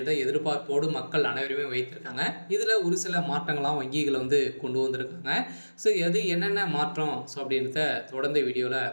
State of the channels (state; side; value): inverted; both; correlation -1.00